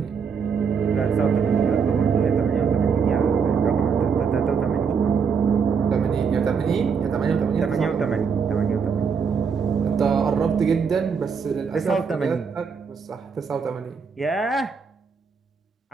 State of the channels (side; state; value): left; quieter; 6.1 dB